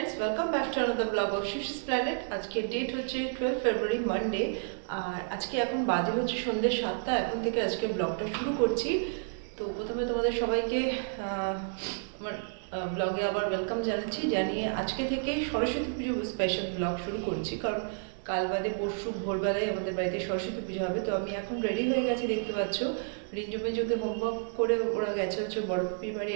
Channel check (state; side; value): silent; left; digital silence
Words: welcome back to another blog of শিশিস প্ল্যানেট। আজকে ডেট হচ্ছে 12 ফেব্রুয়ারি মানডে, আর আজকে এখন বাজে হচ্ছে সন্ধ্যে 7টা। এখন থেকে আজকে ব্লগটা শুরু করছি। তো প্রথমে তোমাদের সবাইকে আমার ব্লগে আবার ওয়েলকাম জানিয়ে আজকে থেকে সরস্বতী পুজো স্পেশাল ব্লগ শুরু করছি। কারণ কাল বাদে পরশু ভোরবেলায় আমাদের বাড়িতে সরস্বতী পুজো হবে। তো আমি এখন রেডি হয়ে গেছি, দেখতে পাচ্ছ। রিঞ্জুকে হোমওয়ার্ক করে ওরা গেছে হচ্ছে বড় পিপির বাড়ি,